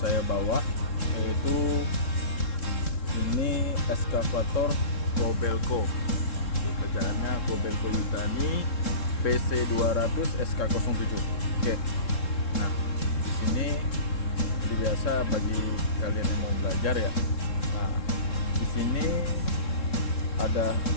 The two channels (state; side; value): late; right; 3.7 ms